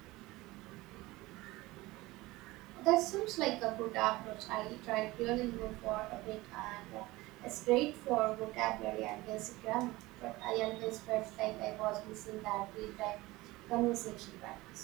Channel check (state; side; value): quieter; left; 20.1 dB